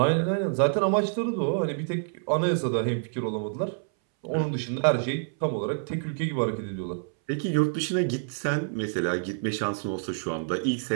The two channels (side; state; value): left; silent; 60 dB below the other